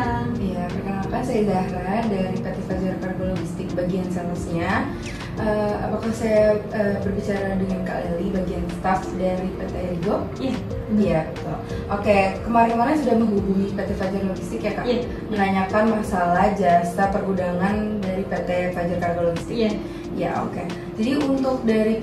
Iya, perkenalkan saya Zahra dari PT Fajar Cargo Logistik bagian salesnya. Apakah saya berbicara dengan Kak Leli bagian staff dari PT Erigo? Iya. Iya, betul. Oke, kemarin-kemarin sudah menghubungi PT Fajar Logistik ya Kak? Iya. Menanyakan masalah jasa pergudangan dari PT Fajar Cargo Logistik. Iya. Ya, oke. Jadi untuk dari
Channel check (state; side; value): identical; both; correlation 1.00